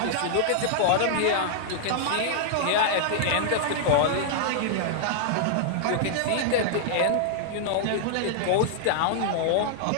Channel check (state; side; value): different; both; correlation -0.01